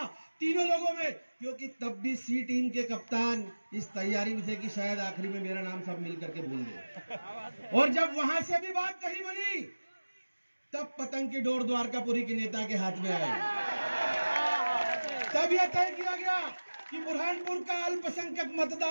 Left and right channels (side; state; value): both; inverted; correlation -1.00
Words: तीनों लोगों में, क्योंकि तब भी सी टीम के कप्तान इस तैयारी में थे कि शायद आखिरी में मेरा नाम सब मिल करके भूल गए। और जब वहां से भी बात कही बनी, तब पतंग की डोर द्वारकापुरी के नेता के हाथ में आई। तब यह तय किया गया कि बुरहानपुर का अल्पसंख्यक